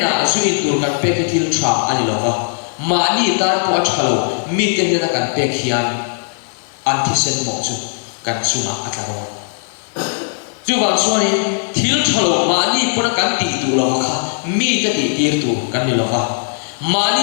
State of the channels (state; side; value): silent; right; digital silence